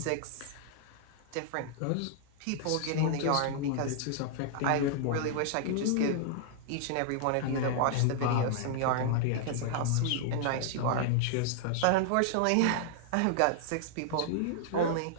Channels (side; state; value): both; different; correlation -0.01